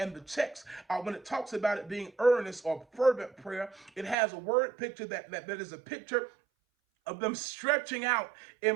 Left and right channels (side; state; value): left; drops out; at 4.2 s